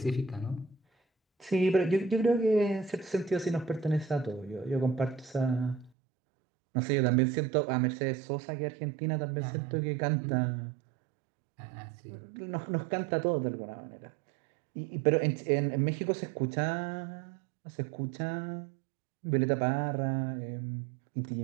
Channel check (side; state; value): left; drops out; at 5.9 s